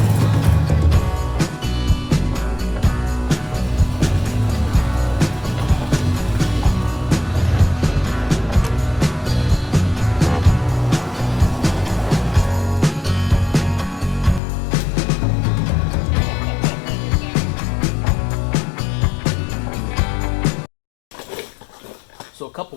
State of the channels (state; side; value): drops out; right; at 14.4 s